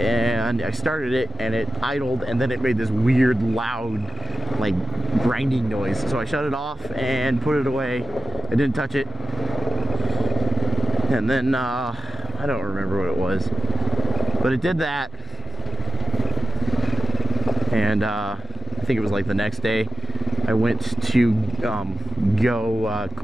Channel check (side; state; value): both; normal; correlation 0.93